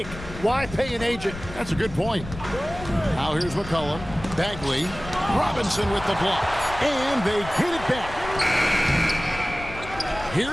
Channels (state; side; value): noise; left; rumble, 13 dB below the sound